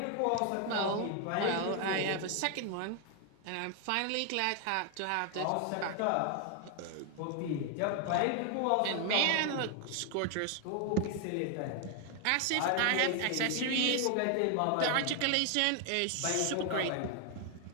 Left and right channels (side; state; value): both; different; correlation 0.01